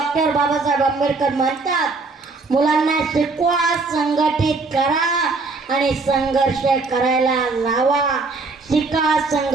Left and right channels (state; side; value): quieter; left; 3.8 dB